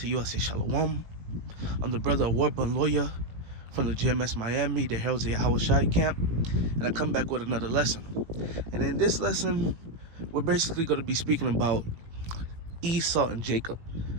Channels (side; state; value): left; late; 18 ms